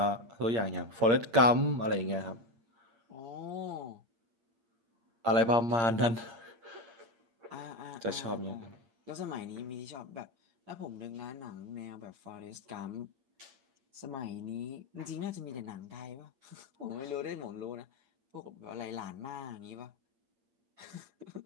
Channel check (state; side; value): late; left; 8.7 ms